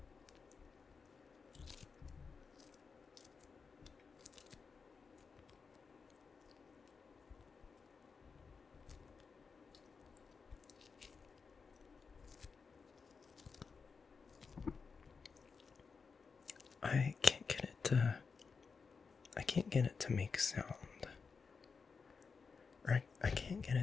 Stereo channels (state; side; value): quieter; right; 5.2 dB